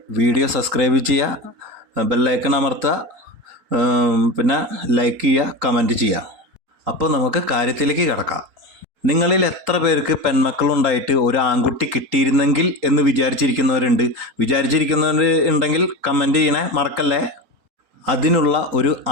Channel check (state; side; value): late; left; 4.3 ms